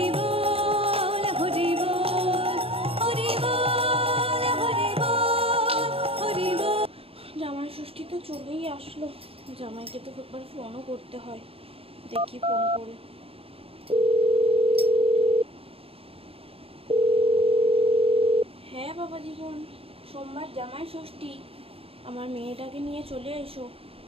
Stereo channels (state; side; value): late; left; 0.28 ms